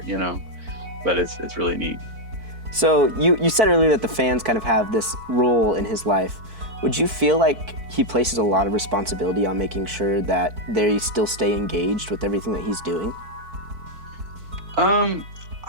but it's really neat. So you said earlier that the fans kind of have this role in his life. Would you feel like he places a lot of responsibility on making sure that they still stay engaged with everything that he's doing?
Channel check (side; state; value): left; late; 4.5 ms